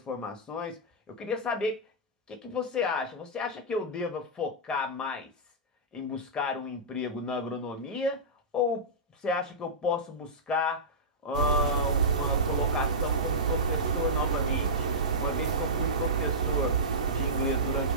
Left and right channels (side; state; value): both; normal; correlation -0.14